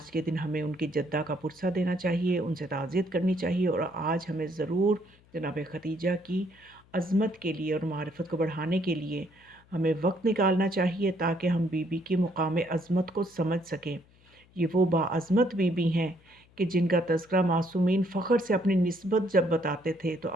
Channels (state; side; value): noise; left; hum, 29 dB below the sound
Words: के दिन हमें उनकी जद्दा का पुरसा देना चाहिए, उनसे ताज़ियत करनी चाहिए, और आज हमें ज़रूर जनाब खदीजा की अज़मत के लिए और मारिफ़त को बढ़ाने के लिए हमें वक्त निकालना चाहिए, ताकि हम बीबी के मुकाम अज़मत को समझ सकें। ये वो बाअज़मत बीबी हैं कि जिनका तज़किरा मासूमीन फ़ख्र से अपनी निस्बत जब बताते थे तो